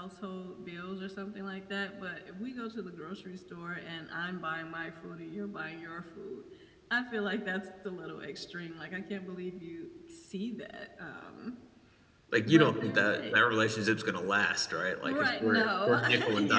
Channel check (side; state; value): both; identical; correlation 1.00